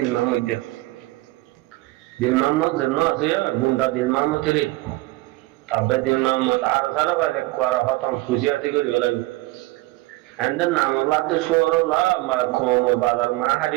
Muhammad de. Dil Muhammad janna ase ya gunda dil Muhammad tere. Abbe dil Muhammad arvara bhai kwara patam khushi ase kori hola. And then namalla te shoro la ma khomo badar ma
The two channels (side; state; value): left; quieter; 20.2 dB